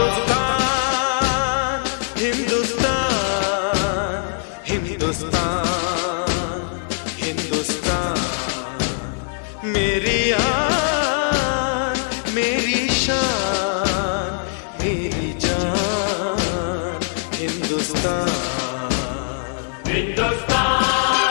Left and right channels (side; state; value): right; silent; digital silence